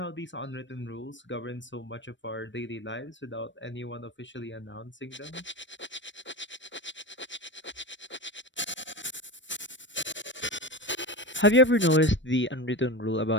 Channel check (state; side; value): late; right; 0.54 ms